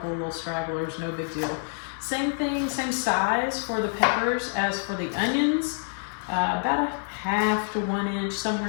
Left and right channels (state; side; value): silent; right; digital silence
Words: of little stragglers, no big deal. Same thing, same size for the peppers as for the onions. About a half to 1 inch,